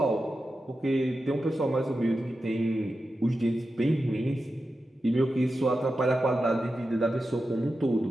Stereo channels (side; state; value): both; normal; correlation 0.91